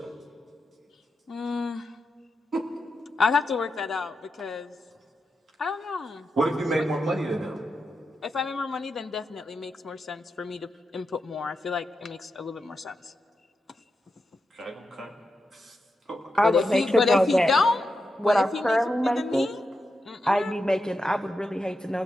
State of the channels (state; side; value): normal; both; correlation 0.88